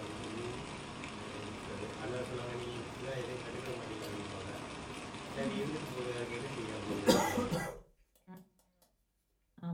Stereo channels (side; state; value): both; identical; correlation 1.00